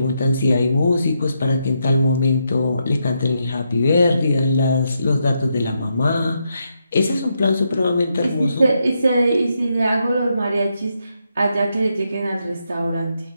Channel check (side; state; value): both; inverted; correlation -0.81